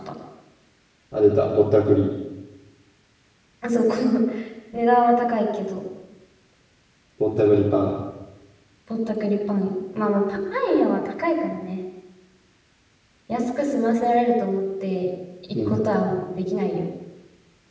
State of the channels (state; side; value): identical; both; correlation 1.00